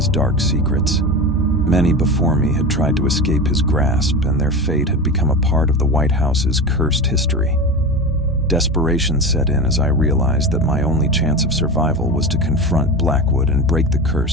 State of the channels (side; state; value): both; normal; correlation 0.26